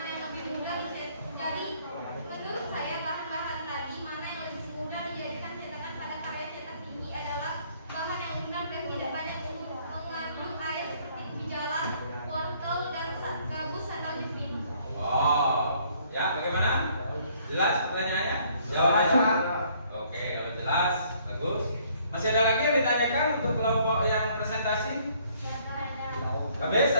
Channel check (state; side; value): inverted; both; correlation -0.63